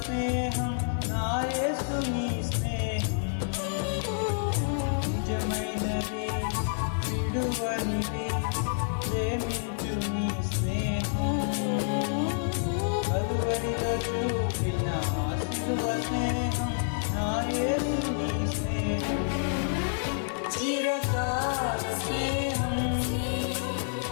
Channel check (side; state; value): right; silent; 59 dB below the other